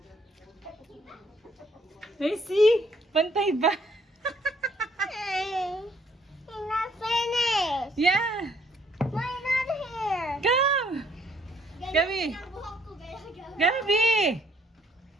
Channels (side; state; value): both; normal; correlation 0.66